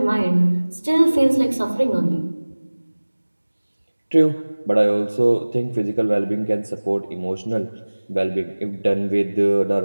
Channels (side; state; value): both; inverted; correlation -1.00